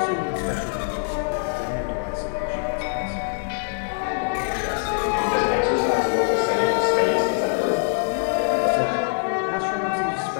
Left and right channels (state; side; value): silent; right; digital silence